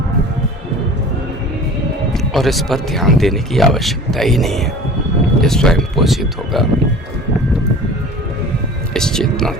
और इस पर ध्यान देने की आवश्यकता ही नहीं है, ये स्वयं पोषित होगा इस चेतना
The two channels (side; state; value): both; normal; correlation 0.41